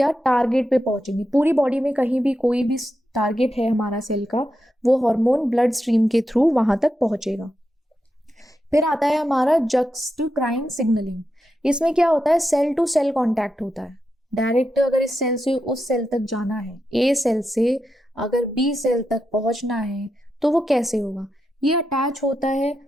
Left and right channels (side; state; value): both; normal; correlation 0.87